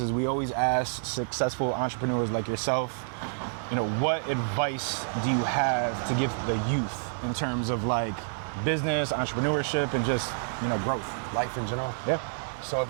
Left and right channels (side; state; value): left; silent; digital silence